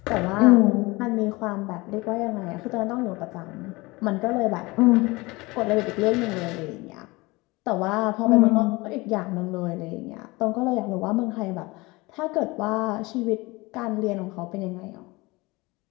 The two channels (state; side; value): quieter; right; 23.1 dB